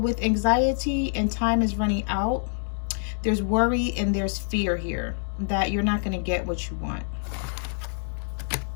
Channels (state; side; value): silent; right; digital silence